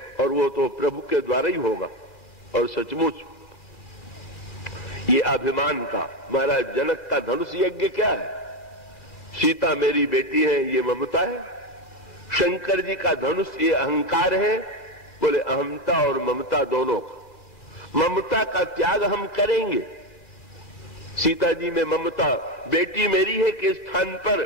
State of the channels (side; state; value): right; late; 2.4 ms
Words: और वो तो प्रभु के द्वारा ही होगा। और सचमुच ये अभिमान का, महाराज जनक का धनुष यज्ञ क्या है? सीता मेरी बेटी है, ये ममता है। शंकर जी का धनुष ये अहंकार है। बोले अहमता और ममता दोनों का। ममता का त्याग हम करेंगे। सीता जी में ममता, बेटी मेरी है के स्थान पर